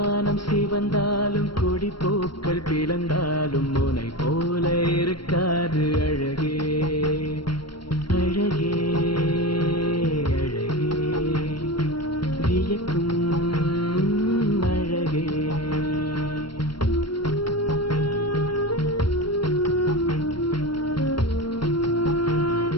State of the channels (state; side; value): late; right; 0.73 ms